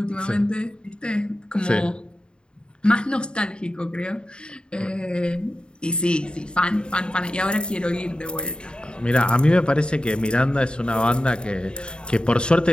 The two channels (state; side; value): late; right; 0.051 ms